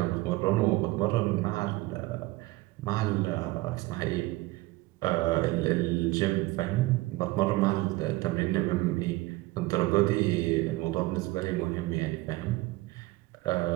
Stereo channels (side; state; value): left; quieter; 19.9 dB